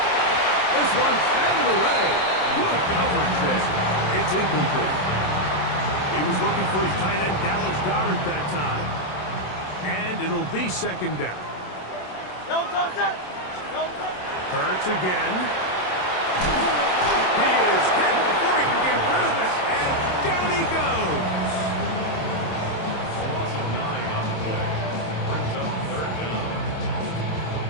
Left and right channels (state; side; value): late; right; 27 ms